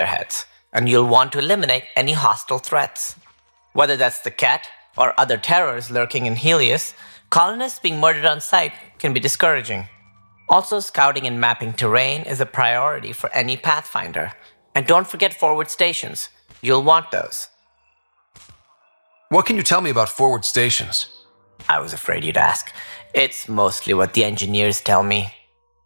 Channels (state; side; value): inverted; both; correlation -1.00